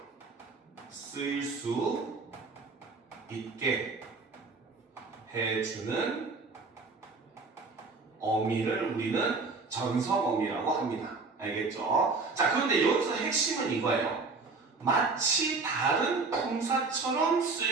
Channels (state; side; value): quieter; left; 4.1 dB